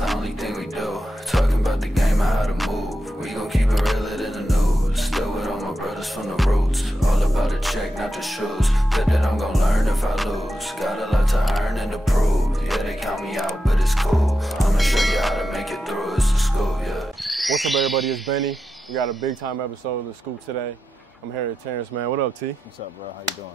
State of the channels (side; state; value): both; normal; correlation 0.89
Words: only thing we do. Talking about the game and how to move. We gon' keep it realer than the news. Still with all my brothers from the roots. All about the check, not the shoes. Bet that I'm gon' learn if I lose. Got a lot to earn and to prove. Yeah, they count me out, but it's cool. I'ma show you how to make it through. It's the school, yeah. What's up, everybody? It's Benny. We got a big time episode of The Scoop today. I'm here with Terance Mann. What up, T? What's up, bro? How you